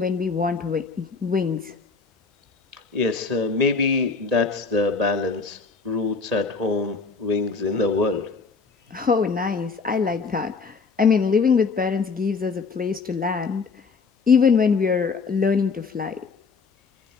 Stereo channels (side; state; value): right; quieter; 4.8 dB